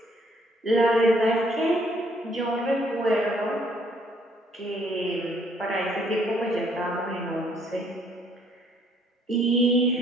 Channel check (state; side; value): normal; both; correlation 0.65